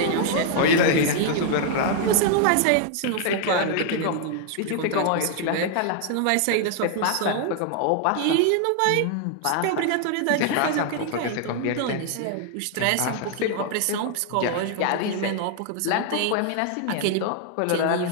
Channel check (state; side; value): different; both; correlation 0.00